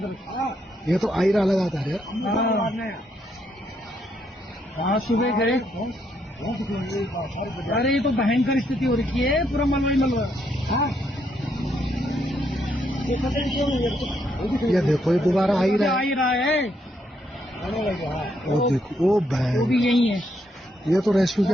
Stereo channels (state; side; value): normal; both; correlation 0.75